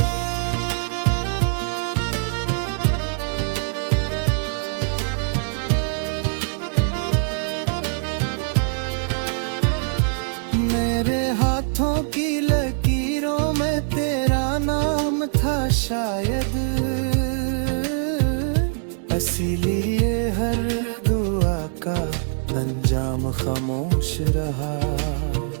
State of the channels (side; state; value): left; silent; 63 dB below the other